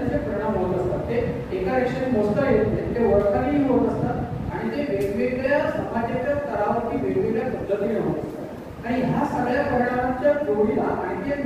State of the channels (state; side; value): identical; both; correlation 1.00